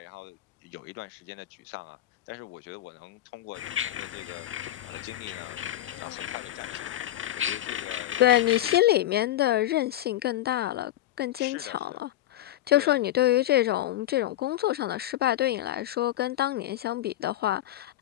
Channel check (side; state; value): right; quieter; 13.6 dB